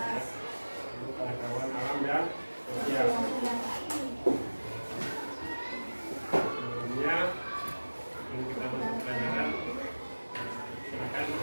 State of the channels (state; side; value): inverted; both; correlation -1.00